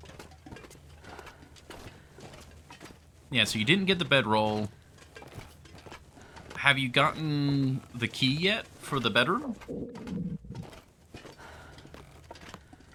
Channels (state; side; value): identical; both; correlation 1.00